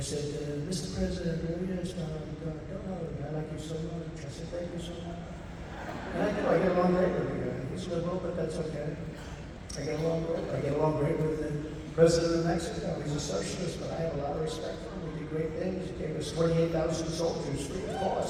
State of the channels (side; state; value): both; identical; correlation 1.00